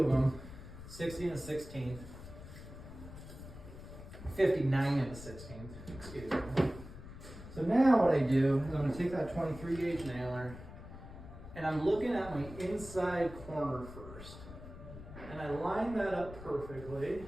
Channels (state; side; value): noise; left; rumble, 14 dB below the sound